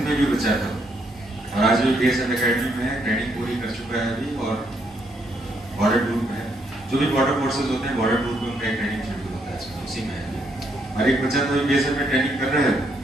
में भी बच्चा था, और आज भी BSF एकेडमी में ट्रेनिंग पूरी कर चुका है अभी, और बॉर्डर टूर में है। जो भी बॉर्डर फोर्सेज होते हैं बॉर्डर टूर में उनका ट्रेनिंग शेड्यूल होता है, उसी में है। और एक बच्चा तो BSF में ट्रेनिंग कर रहे हैं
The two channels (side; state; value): both; normal; correlation 0.74